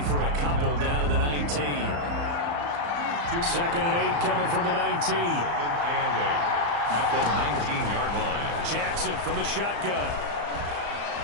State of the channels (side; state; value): left; late; 35 ms